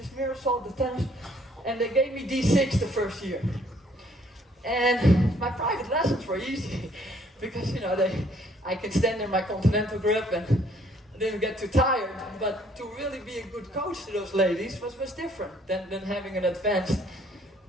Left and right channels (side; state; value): both; normal; correlation 0.63